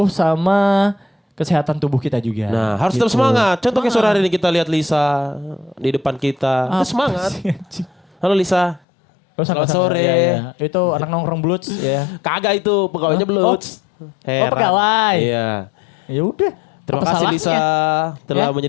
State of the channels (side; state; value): right; drops out; at 8.8 s